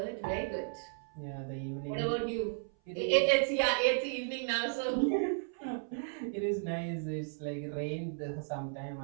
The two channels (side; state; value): left; silent; 55 dB below the other